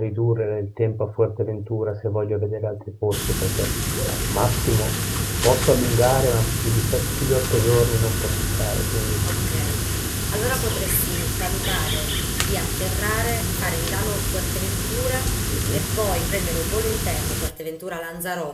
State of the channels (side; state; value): both; identical; correlation 1.00